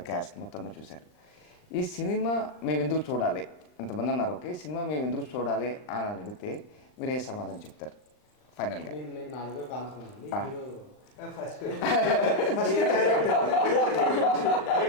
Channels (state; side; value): late; right; 39 ms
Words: క్యాస్ట్ మొత్తం చూశారు. ఈ సినిమా మేము ఎందుకు చూడాలి, ఇంతమంది ఉన్నారు. ఓకే, సినిమా మేము ఎందుకు చూడాలి అని అడిగితే మీరు ఏ సమాధానం చెప్తారు ఫైనల్గా? నేను నా దగ్గర కాన్సెప్ట్ ఉంది. హీరో ఫస్ట్